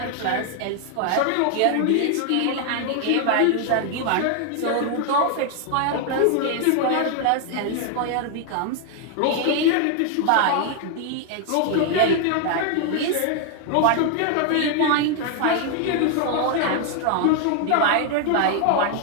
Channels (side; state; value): both; different; correlation 0.00